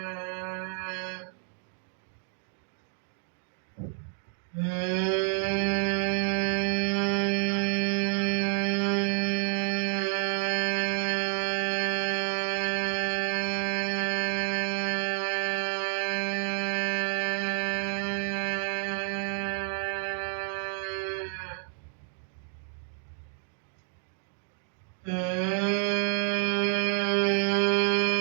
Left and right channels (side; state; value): left; silent; 58 dB below the other